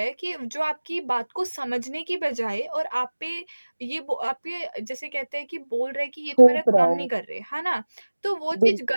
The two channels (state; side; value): inverted; both; correlation -1.00